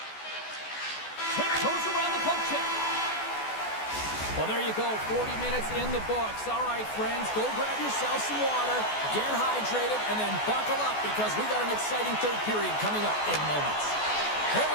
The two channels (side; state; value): right; late; 14 ms